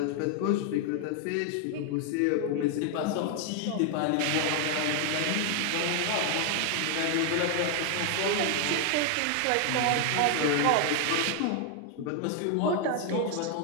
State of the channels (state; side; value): different; both; correlation 0.00